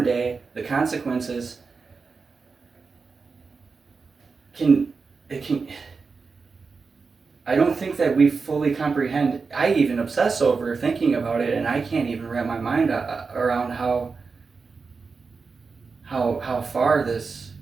day, the consequences can I don't think that we fully comprehend. I even obsess over thinking about it, and I can't even wrap my mind around how far this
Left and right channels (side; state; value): left; quieter; 4.7 dB